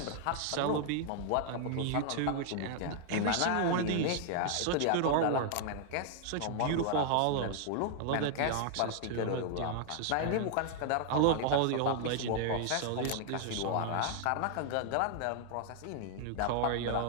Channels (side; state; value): both; different; correlation 0.00